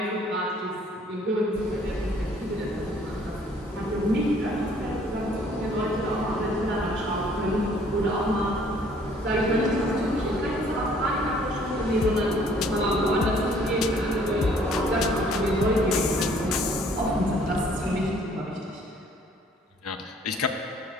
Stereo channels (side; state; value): both; normal; correlation 0.59